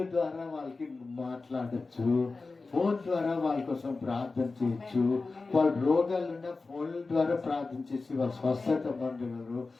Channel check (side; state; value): right; quieter; 3.8 dB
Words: ద్వారా వాళ్ళకి మాట్లాడచ్చు, ఫోన్ ద్వారా వాళ్ళ కోసం ప్రార్థన చేయొచ్చు. వాళ్ళ రోగాలు ఉన్న ఫోన్ల ద్వారా ప్రార్థన చేసి వాళ్ళ స్వస్థత పొందగలరు.